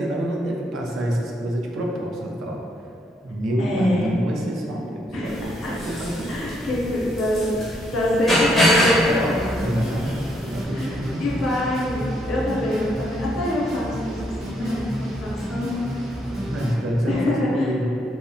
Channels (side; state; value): both; normal; correlation 0.73